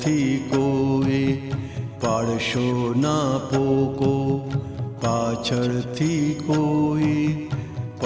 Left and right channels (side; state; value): both; identical; correlation 1.00